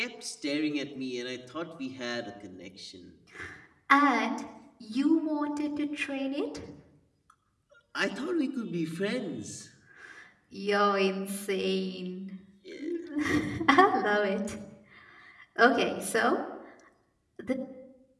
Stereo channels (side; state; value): both; identical; correlation 1.00